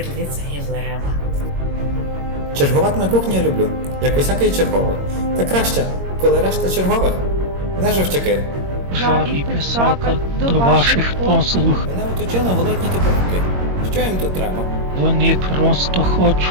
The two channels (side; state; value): left; late; 22 ms